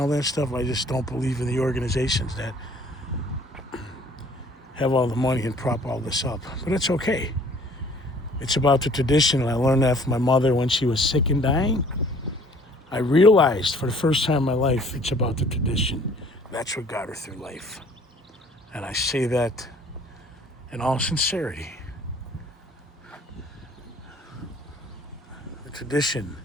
that stuff. I just don't believe in the organizations that have all the money and prop all this up. But it's okay. It's about the tradition, and I learned that from my mother when she was sick and dying. I realized for the first time in my life, it's about the tradition. That's what got her through life. And I say that in all sincerity. The tradition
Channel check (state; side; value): normal; both; correlation 0.55